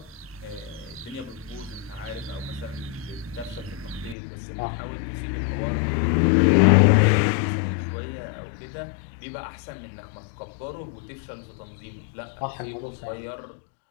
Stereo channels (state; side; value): drops out; right; at 4.2 s